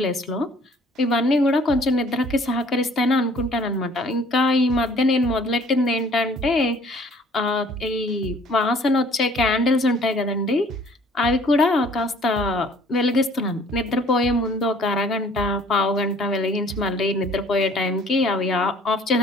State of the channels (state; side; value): normal; both; correlation 0.55